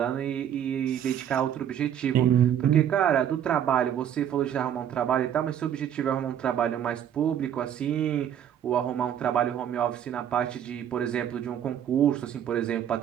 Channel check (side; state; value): left; quieter; 9.8 dB